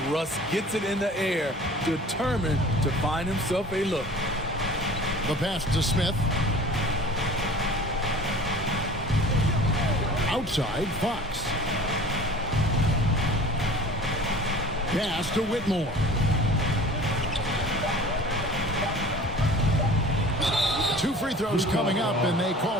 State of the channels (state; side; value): normal; both; correlation 0.44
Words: Russ gets it in the air, determined to find himself a look. The pass to Smith. Outside, Fox. Pass to Whitmore. Two free throws coming up, and they